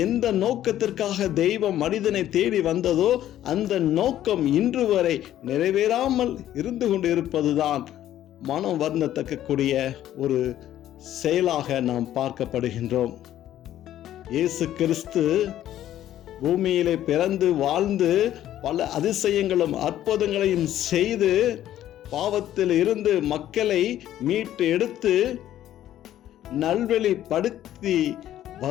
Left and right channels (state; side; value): quieter; right; 12.3 dB